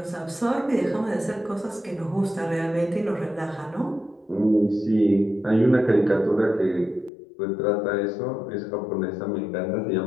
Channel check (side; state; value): right; drops out; at 7.1 s